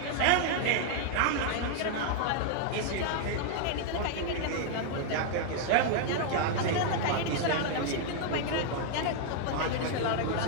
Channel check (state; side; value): different; both; correlation 0.00